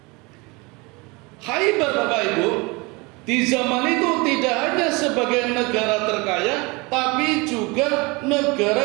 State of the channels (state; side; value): quieter; left; 26.3 dB